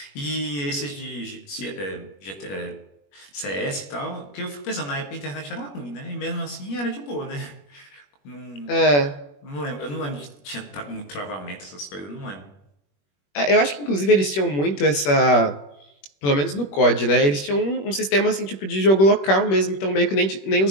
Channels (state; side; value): late; right; 21 ms